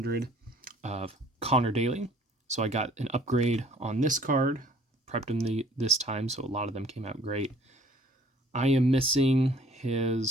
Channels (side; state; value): both; normal; correlation 0.56